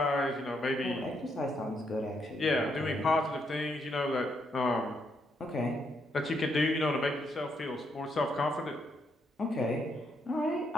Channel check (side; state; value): both; normal; correlation 0.76